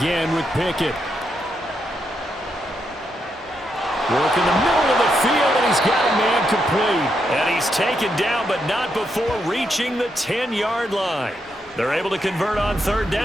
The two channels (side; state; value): both; normal; correlation 0.81